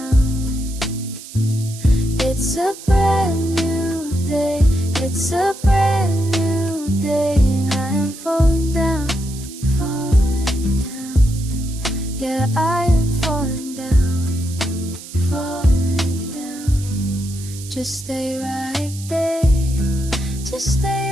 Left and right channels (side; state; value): right; noise; hiss, 15 dB below the sound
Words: It's a brand new day, it's a brand new day, and I am falling down, falling down. Yeah, I am falling down, falling down. Just stay right there, just